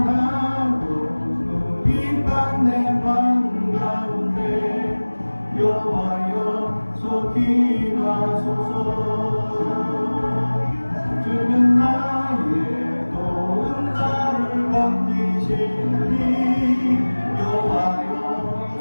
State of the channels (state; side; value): inverted; both; correlation -1.00